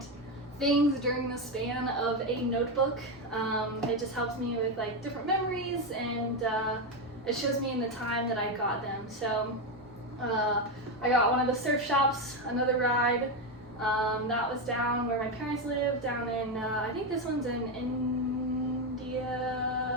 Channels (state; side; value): normal; both; correlation 0.10